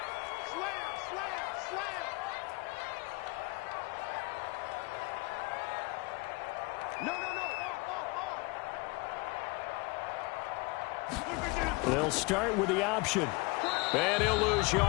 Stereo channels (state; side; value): quieter; right; 25.3 dB